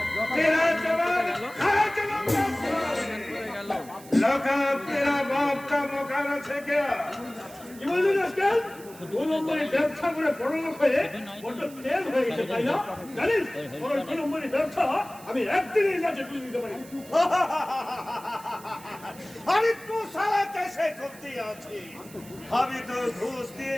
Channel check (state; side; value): noise; right; hiss, 20 dB below the sound